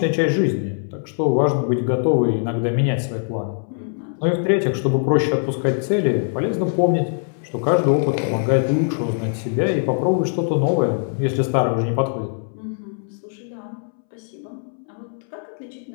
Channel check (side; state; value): right; silent; 64 dB below the other